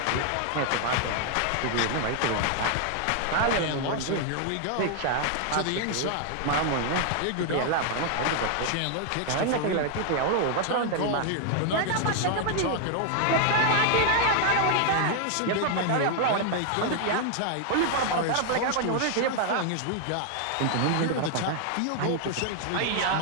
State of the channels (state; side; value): different; both; correlation 0.00